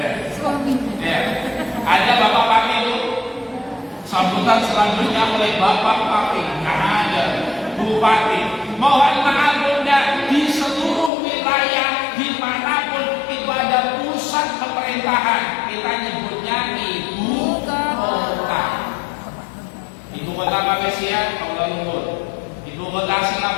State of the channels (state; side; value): drops out; right; at 11.1 s